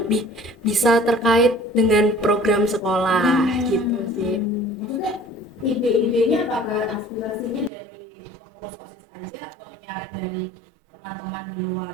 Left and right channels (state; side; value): drops out; left; at 7.7 s